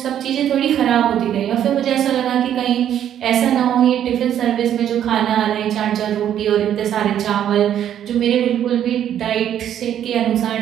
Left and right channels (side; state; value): left; quieter; 10.3 dB